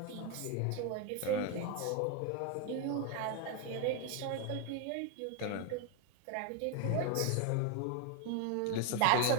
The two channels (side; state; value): both; different; correlation 0.01